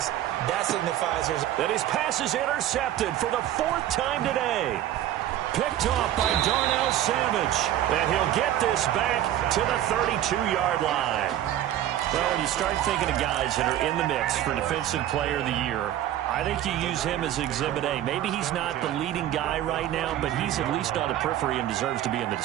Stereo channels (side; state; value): left; quieter; 12.4 dB